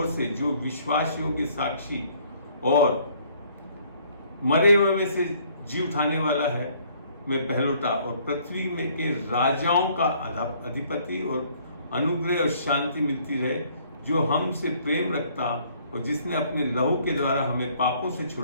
से जो विश्वासियों के साक्षी और मरे हुए में से जी उठाने वाला है, मैं पहलोटा, और पृथ्वी में के राजाओं का अधिपति, और अनुग्रह और शांति मिलती रहे, जो हमसे प्रेम रखता और जिसने अपने लहू के द्वारा हमें पापों से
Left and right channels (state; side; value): inverted; both; correlation -0.62